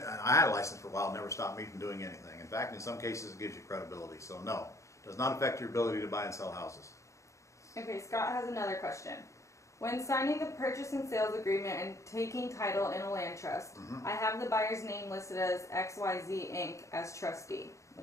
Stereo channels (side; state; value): right; late; 0.15 ms